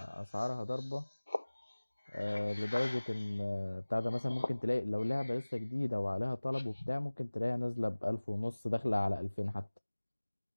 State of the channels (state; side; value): inverted; both; correlation -1.00